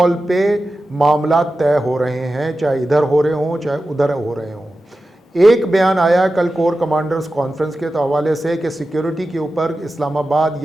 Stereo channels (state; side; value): normal; both; correlation 0.93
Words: पे मामला तय हो रहे हैं, चाहे इधर हो रहे हों चाहे उधर हो रहे हों। एक बयान आया कल कोर कमांडर्स कॉन्फ्रेंस के हवाले से कि सिक्योरिटी के ऊपर इस्लामाबाद